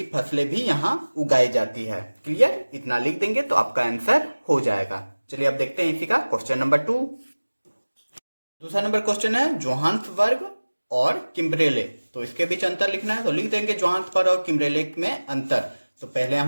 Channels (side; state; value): both; inverted; correlation -1.00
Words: फसलें भी यहाँ उगाई जाती है। क्लियर? इतना लिख देंगे तो आपका आंसर हो जाएगा। चलिए अब देखते हैं इसी का क्वेश्चन नंबर 2। दूसरा नंबर क्वेश्चन है जोहान्सबर्ग और किम्बरेले। तो इसके बीच अंतर लिखना है, तो लिख देंगे जोहान्सबर्ग और किम्बरेले में अंतर। तो पहले